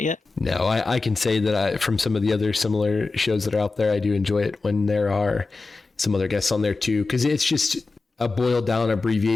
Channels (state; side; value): quieter; right; 3.8 dB